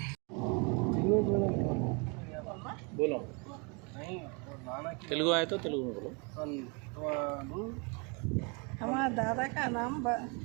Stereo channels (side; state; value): left; quieter; 32.6 dB